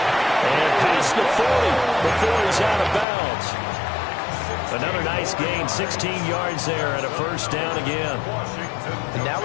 And past the 40 before he's out of bounds. Another nice gain, 16 yards there and a 1st down again. And now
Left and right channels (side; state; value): right; drops out; at 3.1 s